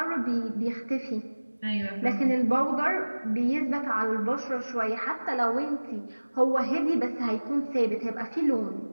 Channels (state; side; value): inverted; both; correlation -1.00